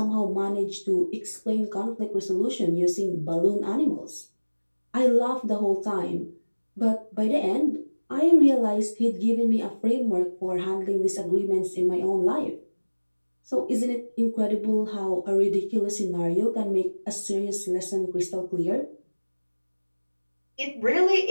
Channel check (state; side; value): inverted; both; correlation -1.00